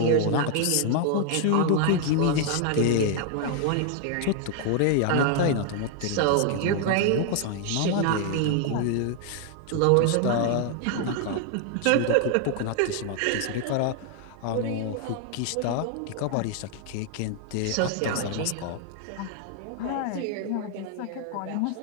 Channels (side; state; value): both; different; correlation 0.00